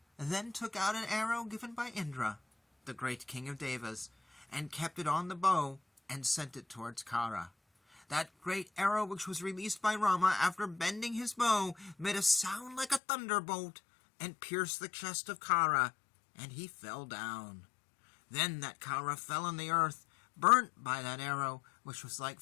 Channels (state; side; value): drops out; right; at 13.0 s